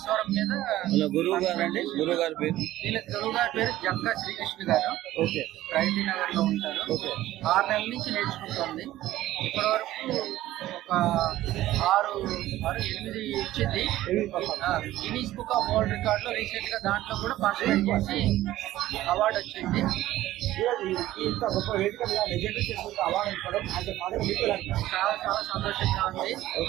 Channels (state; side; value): quieter; left; 14.9 dB